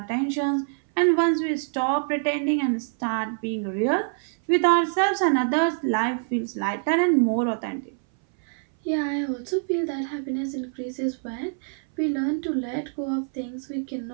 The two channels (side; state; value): left; silent; 59 dB below the other